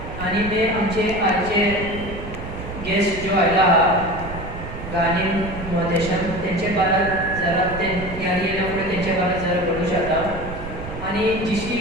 आणि ते आमचे आजचे गेस्ट जो आयला हा गाणी मोदेशन त्यांचे बारात जरा ते यारी येण्यापुढे त्यांच्या बारात जरा बोलू शकता. आणि जिशी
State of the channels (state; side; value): noise; right; rumble, 10 dB below the sound